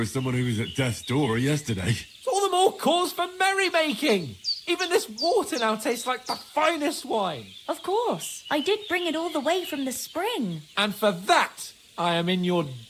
someone who was at death's door yesterday. It's all the more cause for merrymaking. Even this water now tastes like the finest wine. Of course. I did bring it all the way from the spring. And for that, I am in your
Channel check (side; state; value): both; identical; correlation 1.00